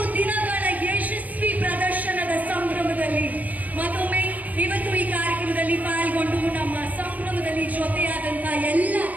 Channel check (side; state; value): left; late; 0.077 ms